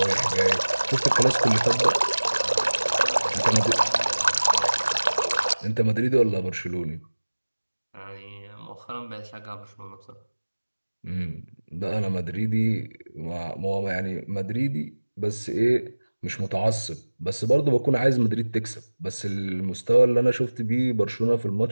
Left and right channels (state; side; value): inverted; both; correlation -1.00